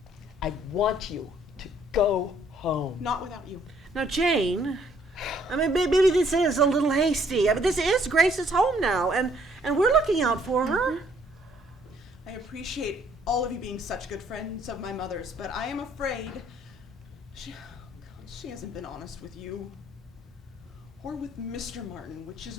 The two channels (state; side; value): normal; both; correlation 0.64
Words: I want you to go home. Not without you. Now, Jane, I mean, maybe this is a little hasty. I mean, this is Grace's home now, and we're looking out for her. I appreciate all of you being such good friends of my mother's, but I am afraid she hasn't been honest with you. Or with Mr. Martin, which is